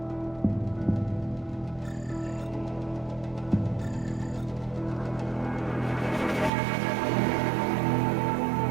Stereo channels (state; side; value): drops out; left; at 6.5 s